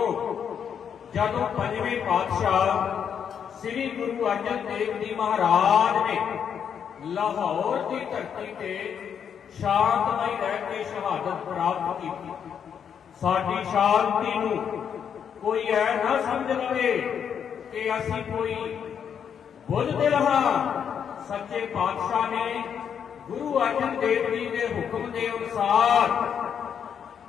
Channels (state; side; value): quieter; right; 7.8 dB